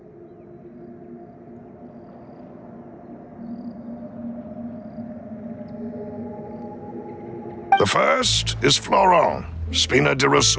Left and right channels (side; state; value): both; identical; correlation 1.00